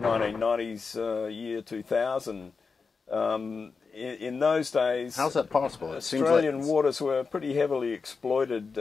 year 2000 in those days, how's that possible? Australian waters were pretty heavily exploited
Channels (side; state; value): right; quieter; 4.8 dB